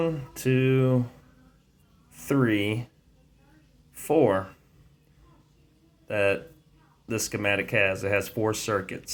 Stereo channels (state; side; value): identical; both; correlation 1.00